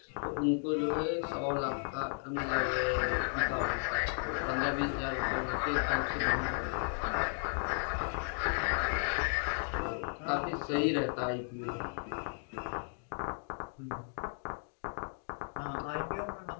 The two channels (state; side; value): silent; right; 55 dB below the other